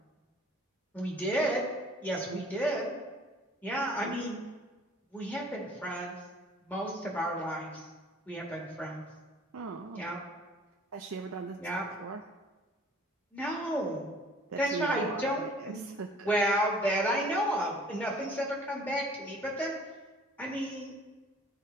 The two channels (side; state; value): both; normal; correlation 0.53